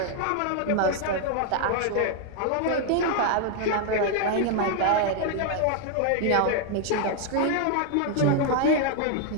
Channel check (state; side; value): different; both; correlation 0.00